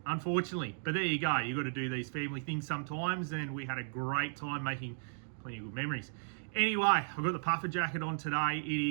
unfortunately, but there you go. You've got to do these family things sometimes, and we had a great time making plenty of good memories. Anyway, I've got the puffer jacket on today.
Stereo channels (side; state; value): left; silent; digital silence